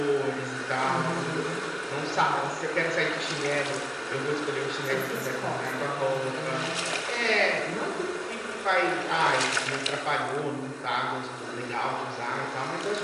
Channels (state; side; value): identical; both; correlation 1.00